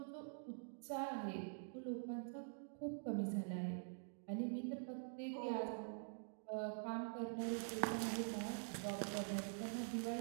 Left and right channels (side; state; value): left; silent; digital silence